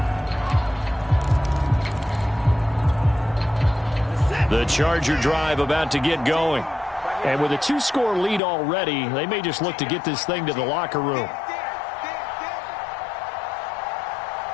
The Charger drive about to get going. And with a 2-score lead already, they may just look to get this thing to the locker room.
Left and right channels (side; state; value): right; drops out; at 8.4 s